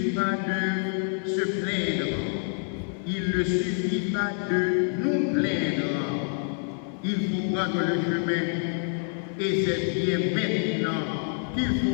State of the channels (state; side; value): silent; right; 60 dB below the other